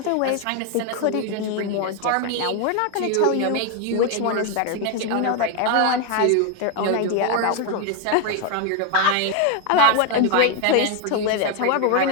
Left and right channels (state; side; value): different; both; correlation 0.01